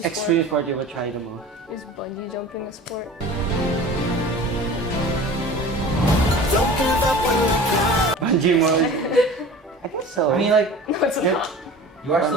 extreme sport you would try the most? Is bungee jumping a sport? Bungee mode. I guess so. I mean, like No, it's Yeah. not. you are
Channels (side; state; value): both; normal; correlation 0.39